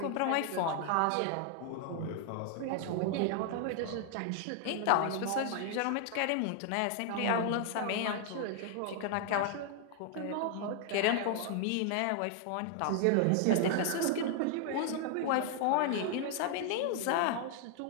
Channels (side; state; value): both; different; correlation 0.00